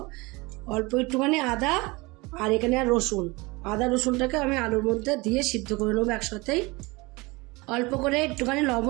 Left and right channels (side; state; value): left; quieter; 24.2 dB